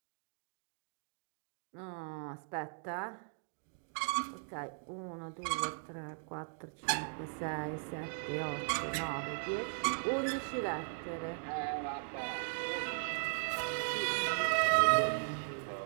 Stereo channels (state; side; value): silent; left; 52 dB below the other